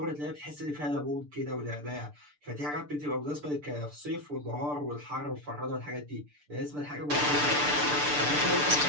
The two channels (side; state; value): left; late; 6.8 ms